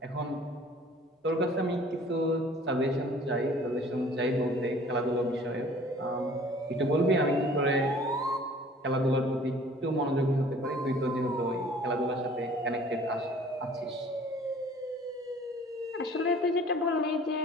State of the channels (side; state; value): both; normal; correlation 0.51